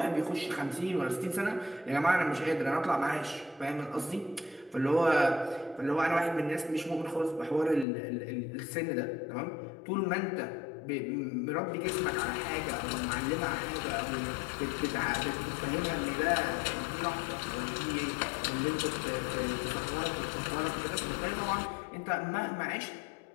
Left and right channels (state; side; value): drops out; right; at 7.9 s